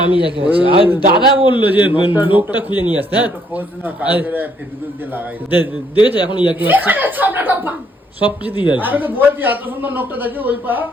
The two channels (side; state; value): both; normal; correlation 0.68